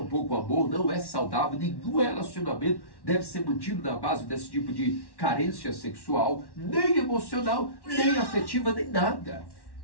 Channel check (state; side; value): late; right; 1.1 ms